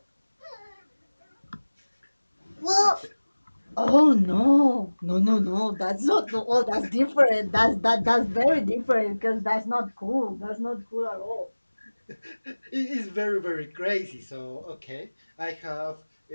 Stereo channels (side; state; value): both; inverted; correlation -1.00